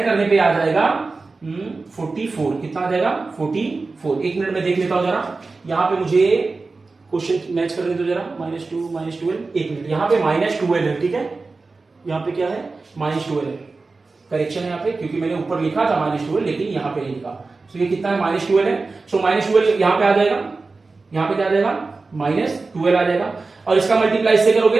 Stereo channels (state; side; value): quieter; left; 3.8 dB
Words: करने पे आ जाएगा 44। कितना आ जाएगा 44। एक मिनट में देख लेता हूं जरा, यहां पे मुझे क्वेश्चन मैच करने दो जरा। -2 -12, एक मिनट, यहाँ पे -12 है, ठीक है, यहाँ पे क्या है -12 है, करेक्शन है यहाँ पे, क्योंकि मैंने ऊपर लिखा था -12 लेकिन यहाँ पे नहीं लिखा। सो ये कितना है -12 है। सो -12 यहाँ पे आ जाएगा, यहाँ पे क्या आ जाएगा -12 आ जाएगा, और इसका मल्टीप्लाई से करोगे